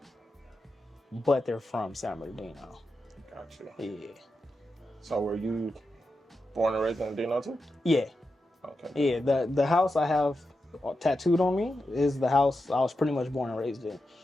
but they're from San Bernardino. Gotcha. Yeah. So were you born and raised in Dino too? Yeah. Okay. Yeah, the house I have tattooed on me is the house I was pretty much born and raised in. Okay.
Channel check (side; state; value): both; normal; correlation 0.89